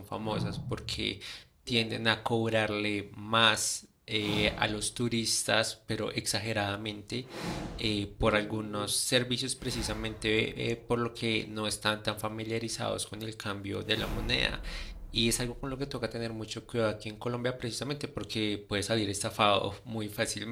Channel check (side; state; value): both; identical; correlation 1.00